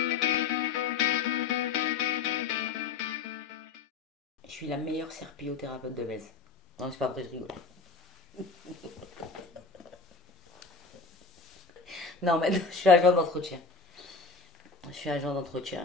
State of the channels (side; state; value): right; quieter; 4.6 dB